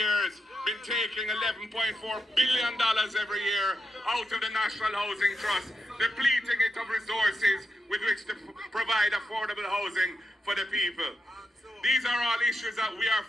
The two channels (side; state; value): both; normal; correlation 0.86